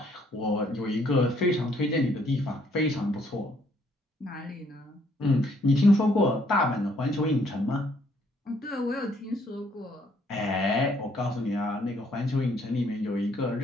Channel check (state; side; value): normal; both; correlation 0.67